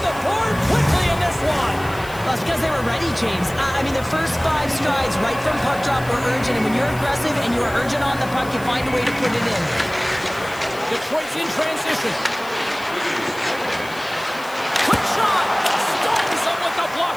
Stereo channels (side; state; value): left; noise; hiss, 19 dB below the sound